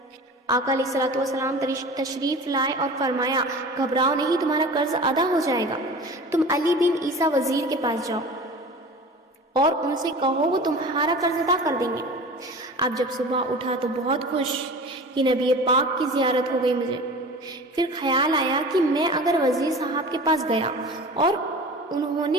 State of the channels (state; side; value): normal; both; correlation 0.37